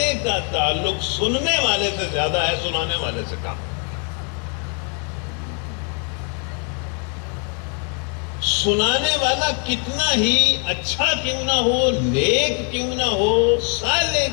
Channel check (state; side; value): quieter; right; 39.6 dB